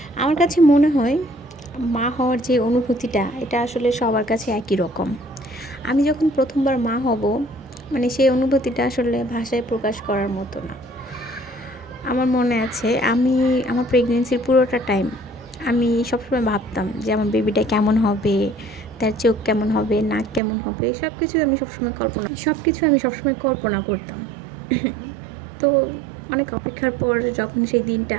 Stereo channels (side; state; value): left; drops out; at 20.4 s